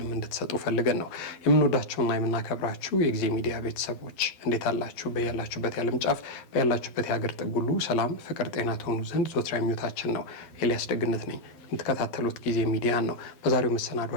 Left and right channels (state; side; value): late; right; 11 ms